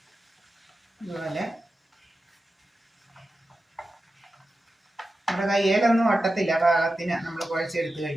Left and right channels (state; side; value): normal; both; correlation 0.92